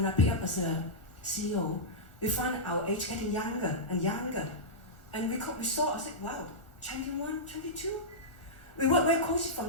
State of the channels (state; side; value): late; right; 1.4 ms